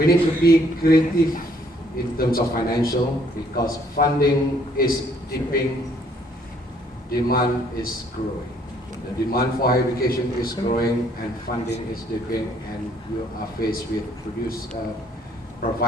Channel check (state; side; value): normal; both; correlation 0.64